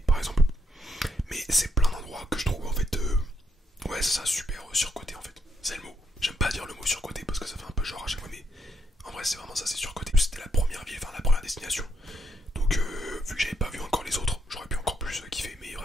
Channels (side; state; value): both; normal; correlation 0.77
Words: par exemple. Mais c'est plein d'endroits que je trouve en fait, ouais c'est ça, super surcoté en fait. C'est le mot. J'aime pas dire le mot surcoté parce que ça fait un peu genre à chaque fois, mais en vrai c'est vraiment ça, c'est surcoté. C'était la première ville, la première destination. Donc vu que j'avais pas vu encore les autres, j'aurais pu encore plus kiffer, mais